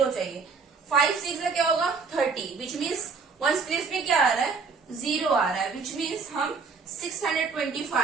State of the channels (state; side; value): quieter; left; 5.0 dB